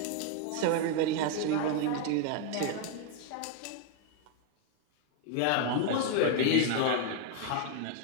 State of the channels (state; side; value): different; both; correlation 0.00